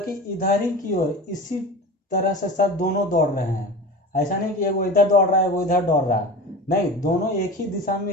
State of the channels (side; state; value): both; normal; correlation 0.33